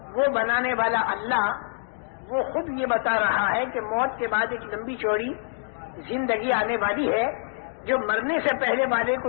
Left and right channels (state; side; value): silent; right; digital silence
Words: وہ بنانے والا اللہ وہ خود یہ بتا رہا ہے کہ موت کے بعد ایک لمبی چوڑی زندگی آنے والی ہے، جو مرنے سے پہلے والے